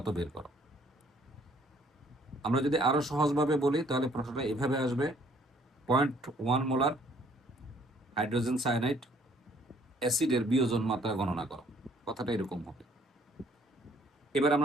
বের করো। আমরা যদি আরো সহজভাবে বলি তাহলে প্রশ্নটা এভাবে আসবে, 0.1 মোলার হাইড্রোজেন সায়ানাইড অ্যাসিডের বিয়োজন মাত্রা গণনা করো। কথাটা এরকম হবে। এবার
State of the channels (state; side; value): normal; both; correlation 0.62